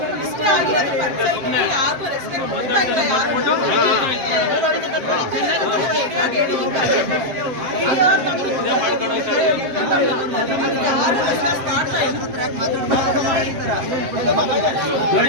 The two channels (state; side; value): late; left; 7.5 ms